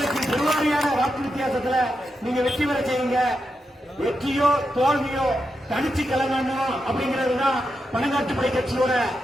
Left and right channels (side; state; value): both; normal; correlation 0.86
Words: பெருவாரியான வாக்கு வித்தியாசத்துல நீங்க வெற்றி பெற செய்யுங்க. வெற்றியோ தோல்வியோ தனிச்சு கலங்கணும் அப்படிங்கிறதுதான் பணங்காட்டுப்படை கட்சியோட